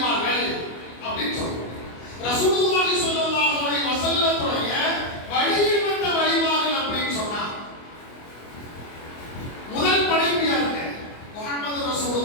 அப்படின்னு சொல்றோம். ரசூலுல்லாஹி ஸல்லல்லாஹு அலைஹி வஸல்லத்துடைய வழியில் வந்த வழிமார்கள் அப்படின்னு சொன்னா முதல் படைப்பு யாருங்க? முஹம்மது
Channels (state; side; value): late; right; 25 ms